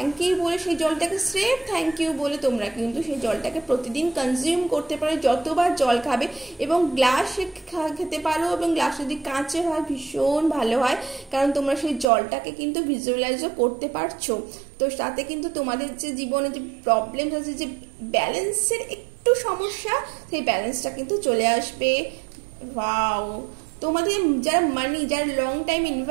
ইউ বলে সেই জলটাকে স্রেফ থ্যাংক ইউ বলে তোমরা কিন্তু সেই জলটাকে প্রতিদিন কনজিউম করতে পারো, যতবার জল খাবে এবং গ্লাসে খেতে পারো এবং গ্লাস যদি কাঁচের হয় ভীষণ ভালো হয়, কারণ তোমরা সেই জলটাকে কিন্তু ভিজুয়ালাইজও করতে পারছো। তো তাতে কিন্তু তোমাদের যে জীবনে যে প্রবলেম আছে, যে ব্যালেন্সের একটু সমস্যা, সেই ব্যালেন্সটা কিন্তু চলে আসবে। ওয়াও, তোমাদের যারা যারা লং টাইম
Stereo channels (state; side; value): drops out; left; at 12.1 s